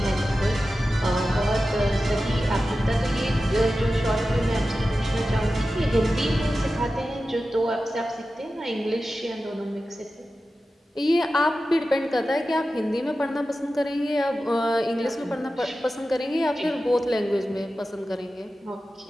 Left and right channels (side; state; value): both; normal; correlation 0.93